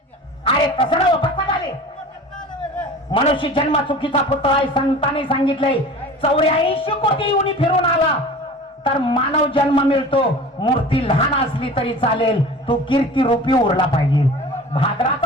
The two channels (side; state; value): both; normal; correlation 0.39